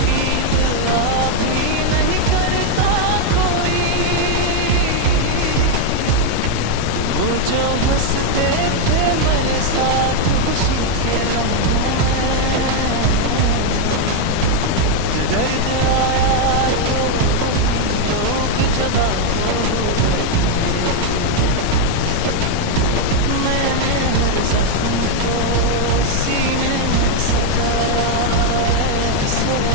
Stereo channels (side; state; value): both; different; correlation 0.01